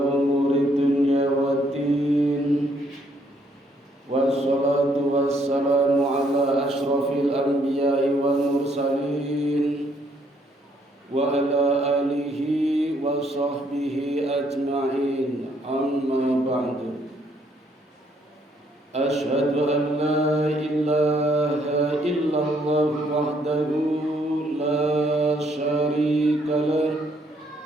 umuri dunya waddin. Wassalatu wassalamu ala ashrafil anbiya'i wal mursalin. Wa ala alihi wa sahbihi ajma'in. Amma ba'du. أشهد أن لا إله إلا الله وحده لا شريك له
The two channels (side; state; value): both; normal; correlation 0.69